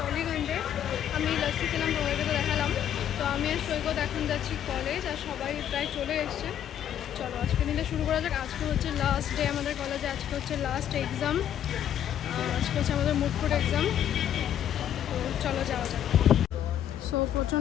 আমি লাস্টি খেলাম, তোমাদেরকে তো দেখালাম। তো আমি আর সৈকত এখন যাচ্ছি কলেজ, আর সবাই প্রায় চলে এসছে। চলো আজকে দিনটা শুরু করা যাক। আজকে হচ্ছে লাস্ট ডে আমাদের কলেজে, আজকে হচ্ছে লাস্ট এক্সাম, আজকে হচ্ছে আমাদের মুডফুড এক্সাম। তো চলো যাওয়া যাক। সো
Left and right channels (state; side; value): quieter; right; 10.3 dB